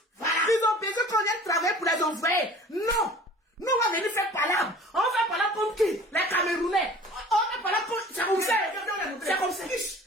Voilà. Ils ont besoin qu'on vienne travailler pour les envoyer. Non. Nous, on va venir faire palabre. On va faire palabre comme qui? Les Camerounais. On va faire palabre comme... C'est comme ça. C'est comme ça.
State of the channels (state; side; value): normal; both; correlation 0.45